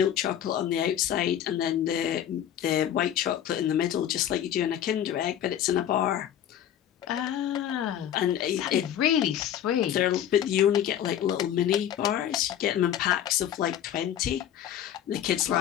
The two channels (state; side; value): quieter; right; 10.5 dB